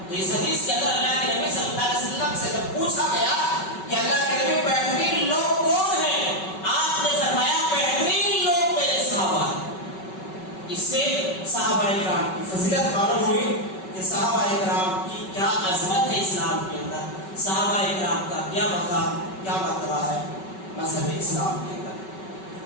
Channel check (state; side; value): late; right; 5.3 ms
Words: تو اس حدیث کے اندر اللہ کے نبی صلی اللہ علیہ وسلم سے جب پوچھا گیا کہ اللہ کے نبی بہترین لوگ کون ہیں آپ نے فرمایا بہترین لوگ میرے صحابہ ہیں. اس سے صحابہ اکرام کی فضیلت معلوم ہوئی کہ صحابہ اکرام کی کیا عظمت ہے اسلام کے اندر. صحابہ اکرام کا کیا مقام کیا مرتبہ ہے مذہب اسلام کے اندر.